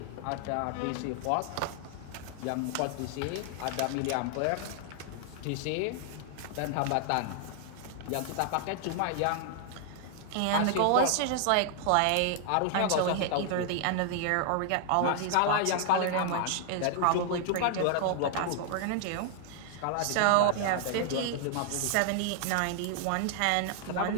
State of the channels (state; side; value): different; both; correlation 0.00